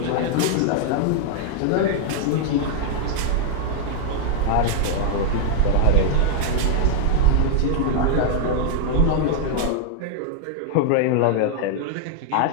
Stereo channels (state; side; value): different; both; correlation -0.01